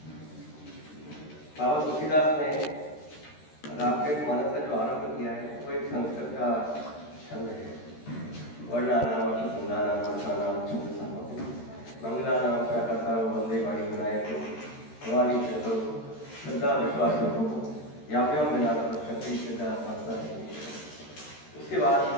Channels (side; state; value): right; late; 13 ms